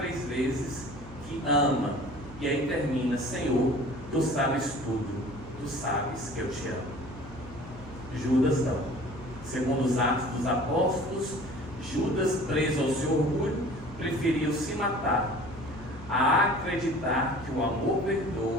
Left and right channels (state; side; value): noise; right; hum, 17 dB below the sound